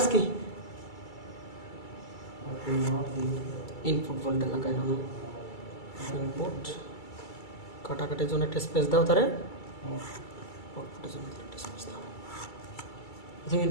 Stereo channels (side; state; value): right; late; 2.3 ms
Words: কি, ইনপুট ভোল্টেজ লাগাই নাও, ইনপুট কাটাকাটির জন্য একটা স্পেস দাও, তারে আউটপুটের জন্য একটা স্পেস দাও। প্রথমে